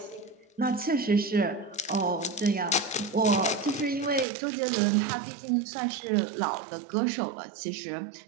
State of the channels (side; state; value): left; drops out; at 4.2 s